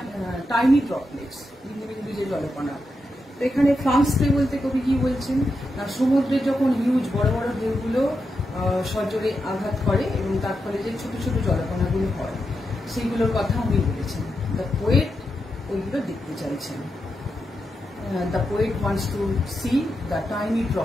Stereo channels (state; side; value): normal; both; correlation 0.86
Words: টাইনি ড্রপলেটস, বিন্দু বিন্দু যে জলকণা। তো এখানে ফ্লান্স স্প্রে বলতে কবি কি বলছেন না, সমুদ্রে যখন হিউজ বড় বড় ঢেউগুলো সজোরে আঘাত করে এবং তার ফলে যে ছোট ছোট জলকণাগুলো হয়, সেইগুলোর কথা উনি বলেছেন। দ্য পোয়েট ওইগুলো দেখতে চাইছেন। The poet wants to see the tiny